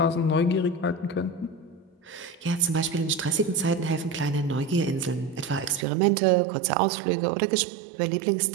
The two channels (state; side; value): drops out; left; at 5.9 s